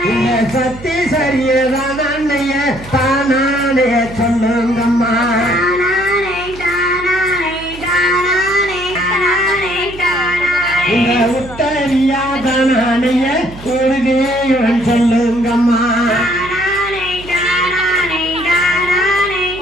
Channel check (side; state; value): right; noise; hum, 16 dB below the sound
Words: சத்தி சரியதான் அண்ணைய தானானே சொல்லுங்கம்மா இந்த உத்தரியாதானைய உறுதியவன் சொல்லுங்கம்மா